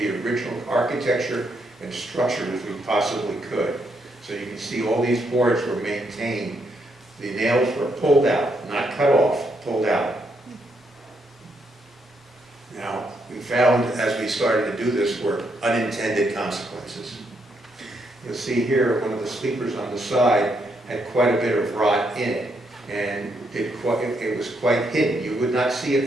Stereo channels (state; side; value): normal; both; correlation 0.77